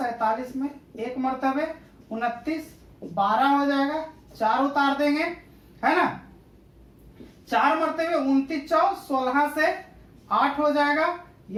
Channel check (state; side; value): identical; both; correlation 1.00